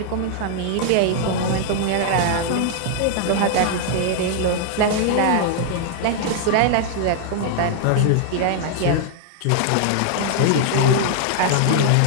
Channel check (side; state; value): both; different; correlation 0.00